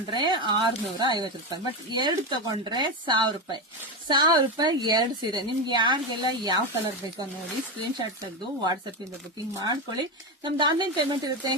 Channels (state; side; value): normal; both; correlation 0.14